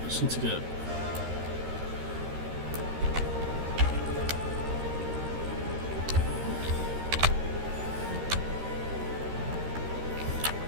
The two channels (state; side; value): late; left; 13 ms